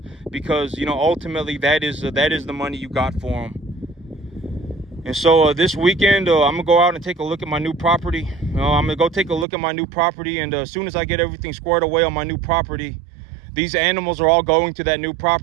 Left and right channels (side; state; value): left; drops out; at 9.5 s